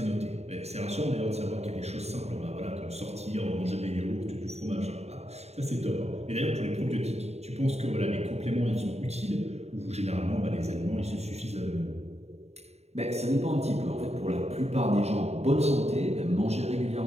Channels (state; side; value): late; left; 0.31 ms